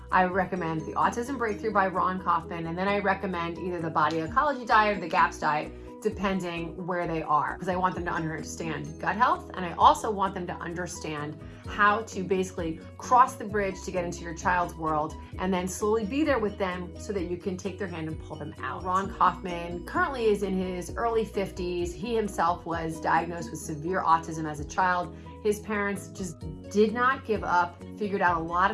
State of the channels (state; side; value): identical; both; correlation 1.00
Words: I recommend The Autism Breakthrough by Raun Kauffman, and then I recommend either the Body Ecology Diet or the GAPS diet, depending where they are, because I want them to understand gut health, and I also want them to understand how to basically cross the bridge to get into your child's world and then slowly be there with them so that you can take their hand and pull them out. Raun Kauffman currently is in his early 50s. He himself was diagnosed with severe autism as a child. His parents just did not give up, figured out a lot